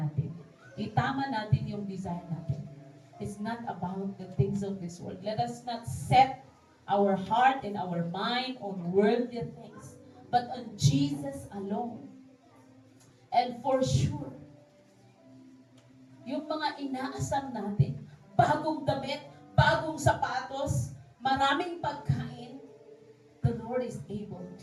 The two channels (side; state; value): both; identical; correlation 1.00